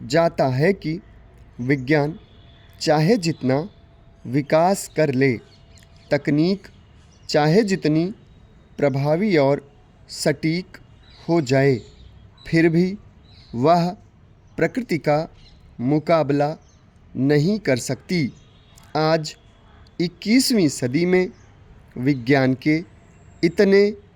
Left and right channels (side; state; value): both; identical; correlation 1.00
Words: जाता है कि विज्ञान चाहे जितना विकास कर ले, तकनीक चाहे जितनी प्रभावी और सटीक हो जाए, फिर भी वह प्रकृति का मुकाबला नहीं कर सकती। आज 21वीं सदी में विज्ञान के इतने